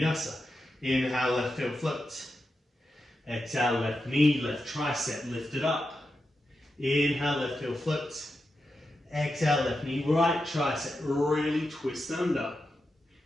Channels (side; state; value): both; normal; correlation 0.89